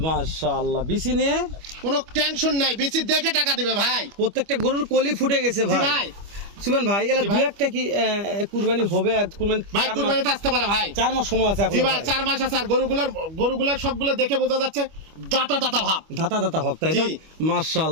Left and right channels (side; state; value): left; late; 25 ms